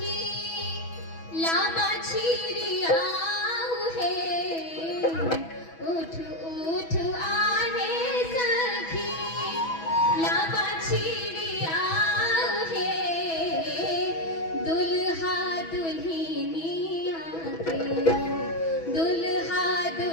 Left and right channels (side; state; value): right; late; 6.1 ms